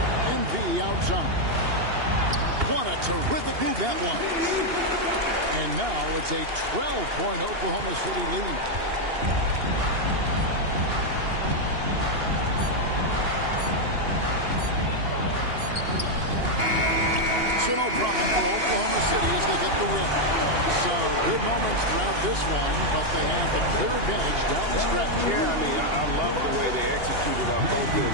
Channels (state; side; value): late; left; 2.8 ms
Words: MP outside. What a terrific move that was. And now it's a 12-point Oklahoma City lead. So no problem for Oklahoma City as they get the win. Some good moments throughout this one, but they have the clear advantage down the stretch. Yeah, I love the way they executed on both